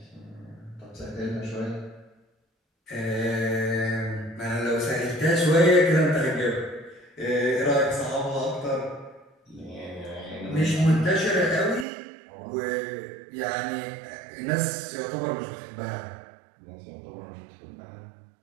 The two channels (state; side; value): drops out; left; at 11.9 s